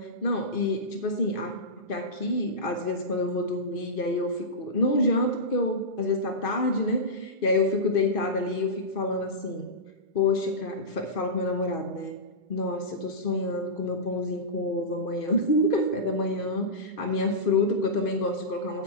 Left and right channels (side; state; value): right; late; 2.5 ms